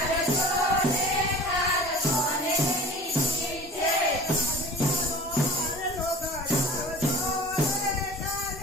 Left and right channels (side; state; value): both; normal; correlation 0.41